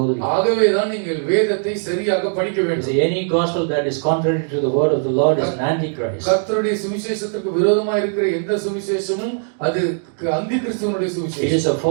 ஆகவே தான் நீங்கள் வேதத்தை சரியாக படிக்க வேண்டும். See, any gospel that is contrary to the word of the Lord is an antichrist. கர்த்தருடைய சுவிசேஷத்துக்கு விரோதமாக இருக்கிற எந்த சுவிசேஷமும் அது அந்தி கிறிஸ்துவனுடைய It சுவிசேஷம். is a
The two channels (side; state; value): left; silent; digital silence